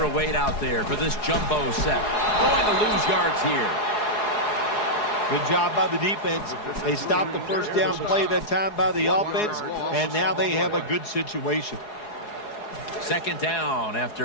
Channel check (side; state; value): right; late; 4.8 ms